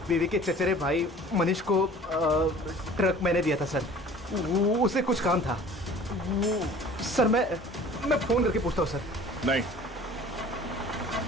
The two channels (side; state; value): both; normal; correlation 0.46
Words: बीवी के चचेरे भाई मनीष को ट्रक मैंने दिया था सर। उसे कुछ काम था। सर मैं फोन करके पूछता हूँ सर। नहीं,